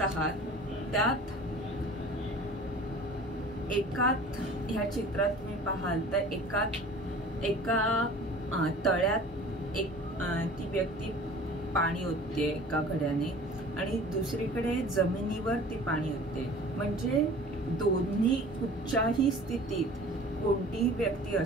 आहात त्यात ह्या चित्रात तुम्ही पाहाल तर एका तळ्यात ती व्यक्ती पाणी ओतते एका घड्याने आणि दुसरीकडे जमिनीवर ती पाणी ओतते, म्हणजे दोन्ही कुठच्याही स्थितीत कोणतीही व्यक्ती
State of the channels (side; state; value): both; normal; correlation 0.44